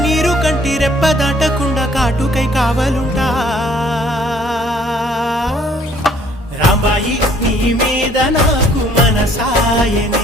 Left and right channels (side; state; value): both; normal; correlation 0.60